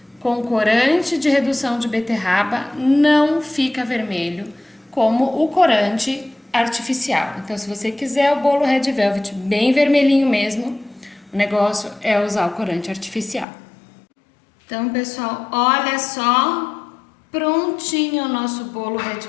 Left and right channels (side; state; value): right; drops out; at 13.5 s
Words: com corante de redução de beterraba, não fica vermelho, como o corante artificial. Então, se você quiser o bolo Red Velvet bem vermelhinho mesmo, O negócio é usar o corante artificial. Então, pessoal, olha só, prontinho o nosso bolo Red